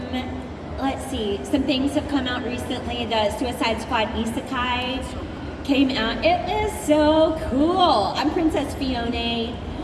Let's see, some things have come out recently. The Suicide Squad Isekai came out. It is so cool. I'm Princess Fiona,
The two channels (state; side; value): identical; both; correlation 1.00